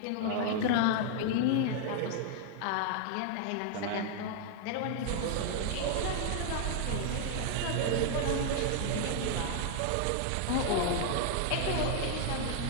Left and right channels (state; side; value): different; both; correlation 0.00